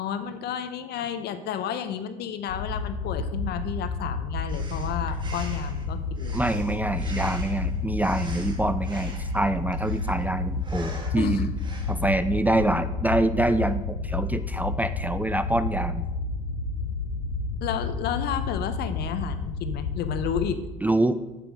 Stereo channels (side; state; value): both; normal; correlation 0.51